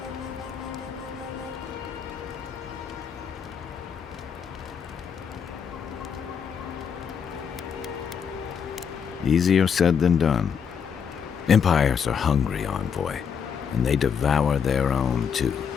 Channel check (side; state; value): right; quieter; 7.0 dB